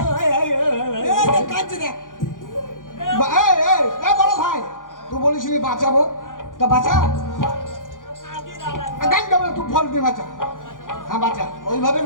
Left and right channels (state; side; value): late; right; 0.89 ms